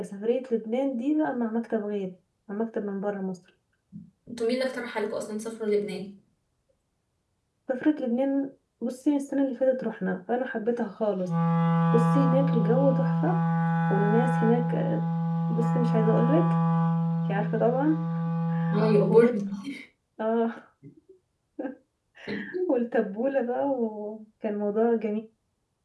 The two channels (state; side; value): identical; both; correlation 1.00